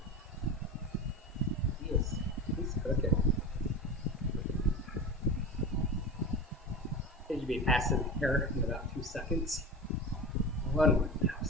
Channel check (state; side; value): normal; both; correlation 0.28